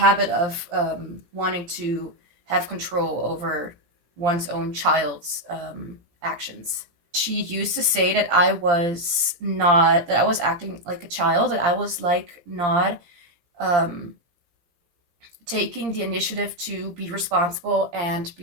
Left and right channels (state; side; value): late; left; 17 ms